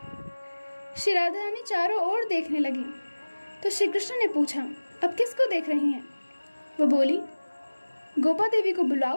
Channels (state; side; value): inverted; both; correlation -1.00